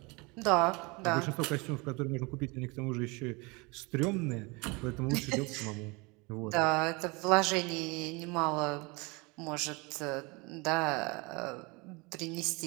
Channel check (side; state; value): left; quieter; 27.2 dB